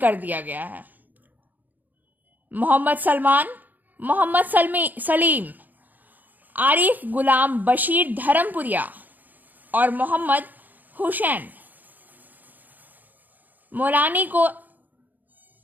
दिया गया है। मोहम्मद सलमान, मोहम्मद सलीम, आरिफ गुलाम बशीर धर्मपुरिया और मोहम्मद हुसैन मौलानी को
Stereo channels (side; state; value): left; late; 0.084 ms